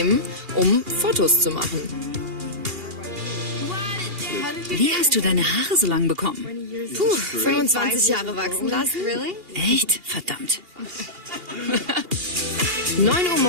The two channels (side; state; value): left; late; 2.7 ms